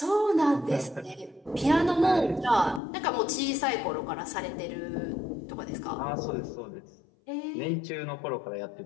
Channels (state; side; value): drops out; right; at 2.8 s